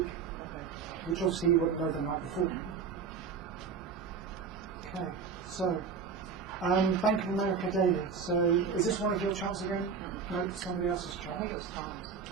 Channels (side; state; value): left; quieter; 5.8 dB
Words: which obviously you wouldn't know the night before. Okay, so Bank of America daily. So is this one of your charts again? No, it's somebody else's I chart. think it was Tom's.